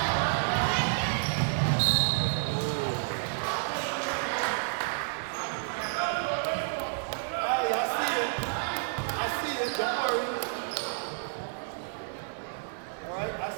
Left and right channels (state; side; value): silent; left; 58 dB below the other